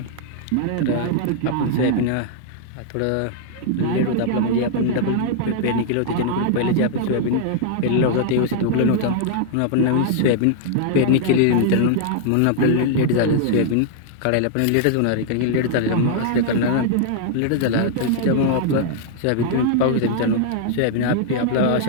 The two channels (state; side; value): different; both; correlation -0.01